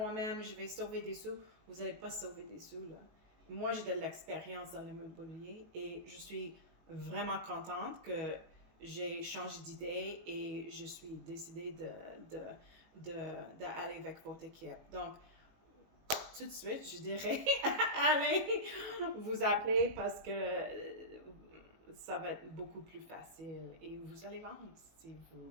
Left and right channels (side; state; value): left; late; 18 ms